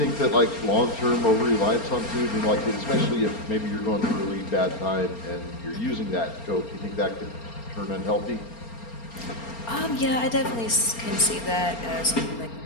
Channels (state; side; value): late; right; 4.3 ms